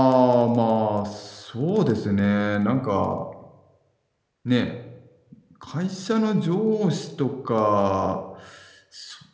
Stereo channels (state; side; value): identical; both; correlation 1.00